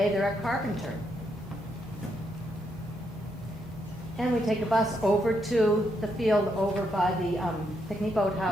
they're at Carpenter. And we take a bus over to the field over by the picnic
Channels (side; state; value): both; normal; correlation 0.78